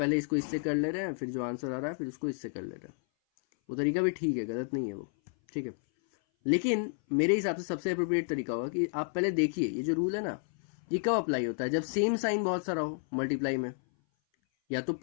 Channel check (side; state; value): right; silent; 57 dB below the other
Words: इसको इससे कर ले रहे हैं, फिर जो आंसर आ रहा है फिर उसको इससे कर ले रहे हैं। वो तरीका भी ठीक है, गलत नहीं है वो, ठीक है। लेकिन मेरे हिसाब से सबसे अप्रोप्रिएट तरीका होगा कि आप पहले देखिए ये जो रूल है ना, ये कब अप्लाई होता है, जब सेम साइन बहुत सारा हो मल्टीप्लाई में, या तो